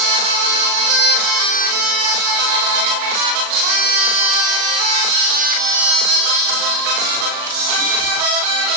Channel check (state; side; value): late; left; 38 ms